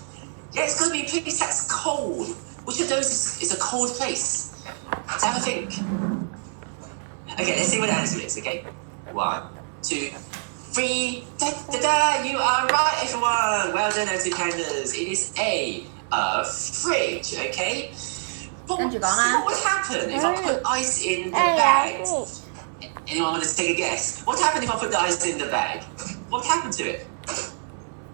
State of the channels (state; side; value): silent; left; 58 dB below the other